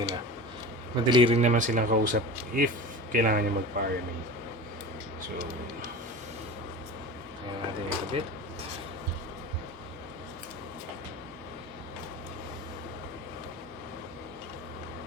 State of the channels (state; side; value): normal; both; correlation 0.32